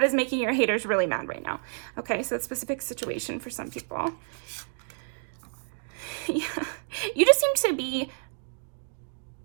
making your haters really mad right now. Okay, so it's a specific situation for some people. Yeah, you just seem to be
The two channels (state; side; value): silent; left; digital silence